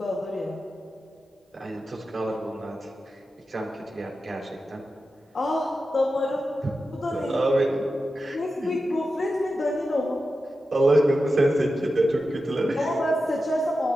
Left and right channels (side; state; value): both; normal; correlation 0.91